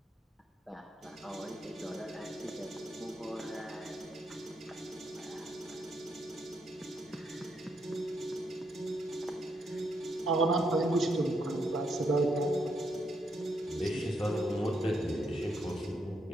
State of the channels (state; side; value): normal; both; correlation 0.77